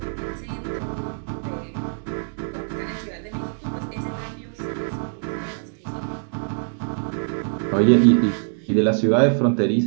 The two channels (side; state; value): left; silent; digital silence